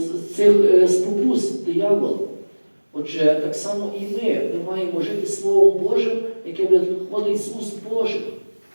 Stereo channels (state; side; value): inverted; both; correlation -1.00